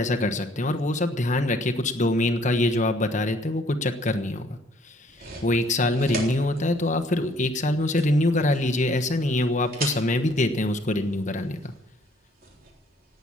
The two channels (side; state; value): both; normal; correlation 0.61